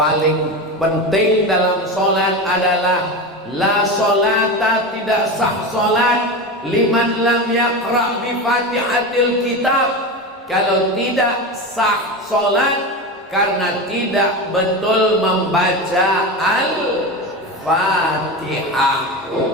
penting dalam sholat adalah la sholata, tidak sah sholat liman lam yaqra bi fatihatil kitab. Kalau tidak sah sholat karena tidak betul membaca al-fatihah.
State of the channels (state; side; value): normal; both; correlation 0.23